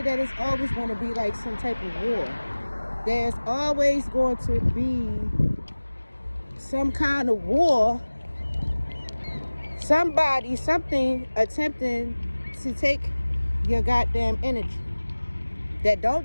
that it's always going to be like some type of war. There's always going to be some kind of war. Somebody, something attempting to take your goddamn energy that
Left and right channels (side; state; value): both; inverted; correlation -1.00